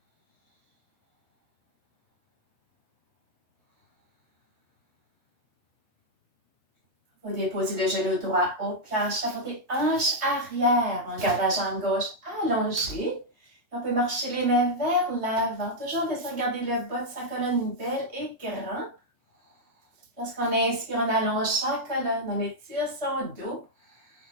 Vous déposez le genou droit au plancher, portez hanche arrière. On garde la jambe gauche allongée. On peut marcher les mains vers l'avant. Toujours en essayant de garder le bas de sa colonne belle et grand. Lorsqu'on inspire, on allonge sa colonne, on étire son dos.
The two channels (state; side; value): late; left; 3.2 ms